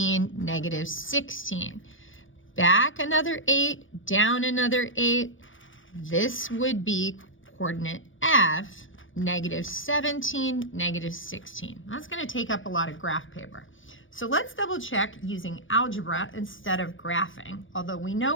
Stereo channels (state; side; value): late; right; 0.57 ms